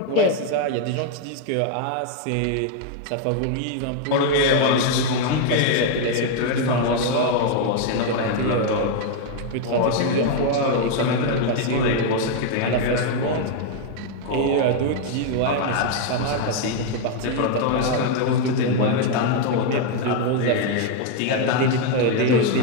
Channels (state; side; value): different; both; correlation 0.00